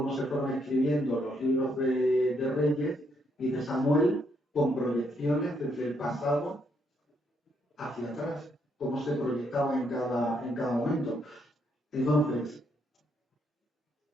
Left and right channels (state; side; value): normal; both; correlation 0.74